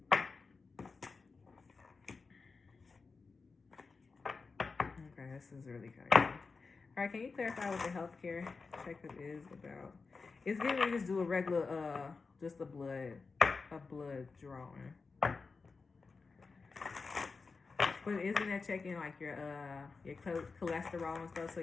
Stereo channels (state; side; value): quieter; right; 4.5 dB